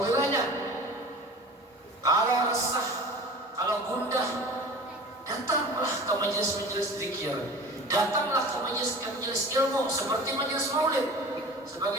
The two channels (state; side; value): normal; both; correlation 0.39